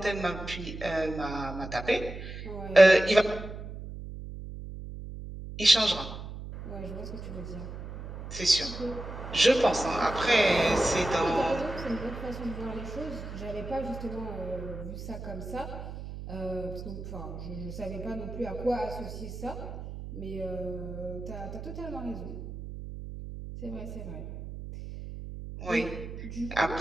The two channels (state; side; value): noise; right; hum, 10 dB below the sound